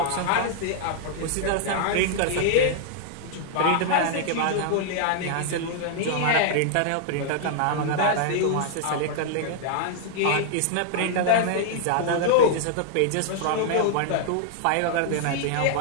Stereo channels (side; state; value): both; different; correlation 0.00